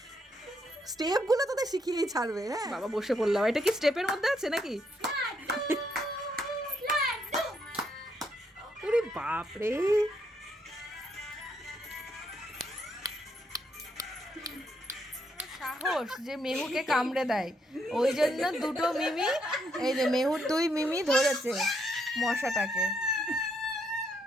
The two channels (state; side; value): normal; both; correlation 0.75